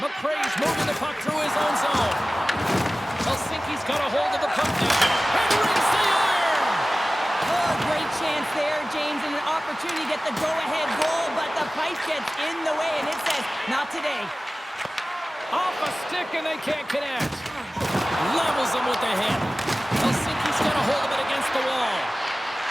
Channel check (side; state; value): both; normal; correlation 0.97